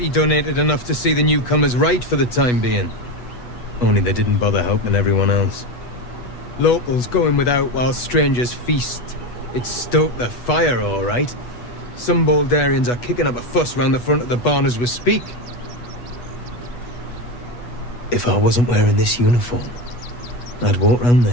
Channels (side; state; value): right; late; 8.2 ms